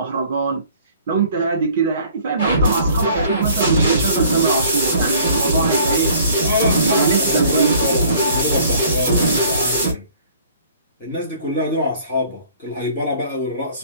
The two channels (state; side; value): inverted; both; correlation -0.54